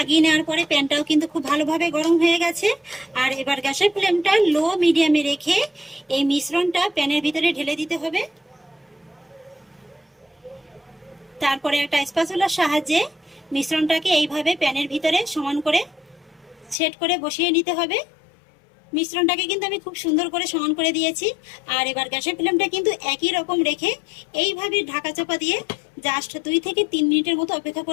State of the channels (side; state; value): right; drops out; at 16.8 s